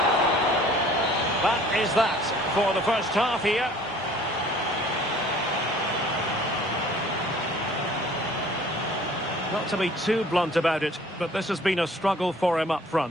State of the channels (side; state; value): both; normal; correlation 0.52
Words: That is that for the first half here. Not to be too blunt about it, but this has been a struggle for him up